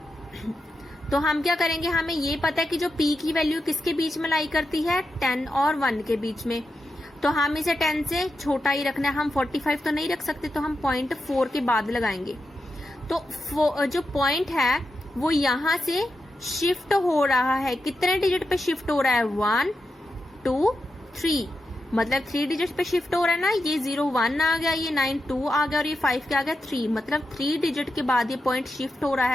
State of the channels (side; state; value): both; normal; correlation 0.88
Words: तो हम क्या करेंगे, हमें ये पता है कि जो p की वैल्यू किसके बीच में लाई करती है, 10 और 1 के बीच में। तो हम इसे 10 से छोटा ही रखना है, हम 45 तो नहीं रख सकते, तो हम 0.4 के बाद लगाएंगे। तो जो पॉइंट है वो यहां से शिफ्ट हो रहा है, कितने डिजिट पे शिफ्ट हो रहा है, 1 2 3, मतलब 3 डिजिट पे शिफ्ट हो रहा है ना। ये 0 1 आ गया, ये 9 2 आ गया और ये 5 क्या आ गया 3, मतलब 3 डिजिट के बाद ये पॉइंट शिफ्ट हो रहा